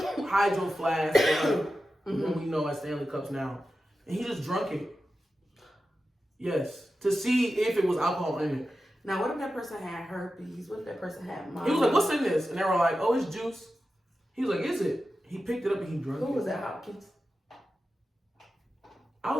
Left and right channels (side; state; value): both; normal; correlation 0.92